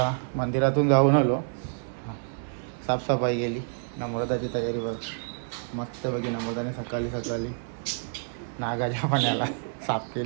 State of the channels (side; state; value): left; silent; 59 dB below the other